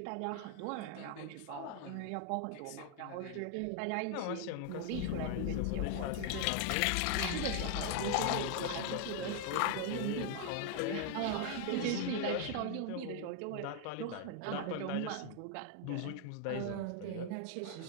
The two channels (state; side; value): different; both; correlation 0.00